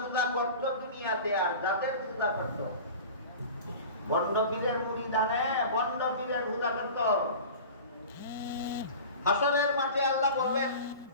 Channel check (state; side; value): inverted; both; correlation -0.37